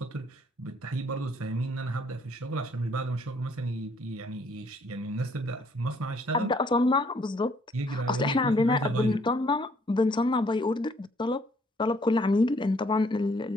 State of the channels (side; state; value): both; normal; correlation 0.65